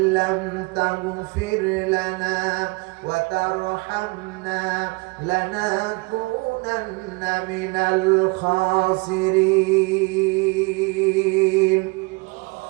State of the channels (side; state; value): left; quieter; 27.7 dB